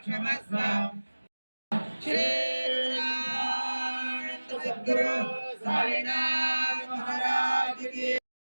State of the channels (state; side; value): inverted; both; correlation -1.00